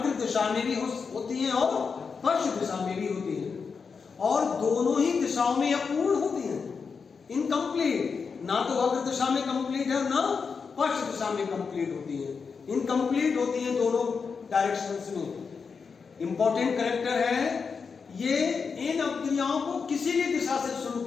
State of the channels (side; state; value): right; quieter; 5.5 dB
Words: दिशा में भी होती हैं और पश्च दिशा में भी होती हैं, और दोनों ही दिशाओं में अपूर्ण होती हैं, इनकम्प्लीट। ना तो अग्र दिशा में कंप्लीट है और ना पश्च दिशा में कंप्लीट होती है, इनकम्प्लीट होती हैं दोनों डायरेक्शंस में। इंपॉर्टेंट कैरेक्टर है ये, इन अपक्रियाओं को किसी भी दिशा से शुरू